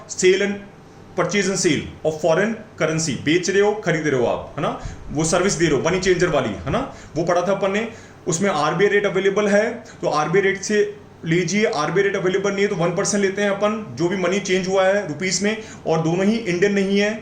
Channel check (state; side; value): identical; both; correlation 1.00